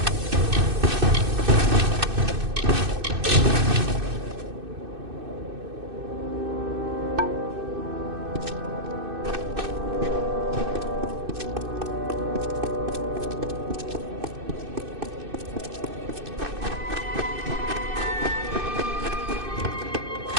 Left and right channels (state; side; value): late; left; 2.6 ms